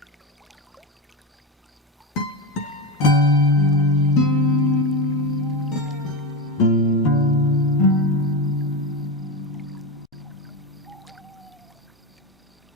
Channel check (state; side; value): normal; both; correlation 0.17